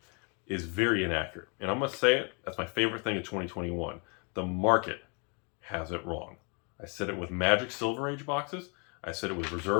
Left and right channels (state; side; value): quieter; right; 34.9 dB